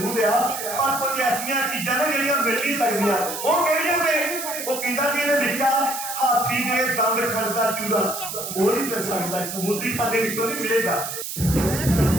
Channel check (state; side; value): noise; right; hiss, 6 dB below the sound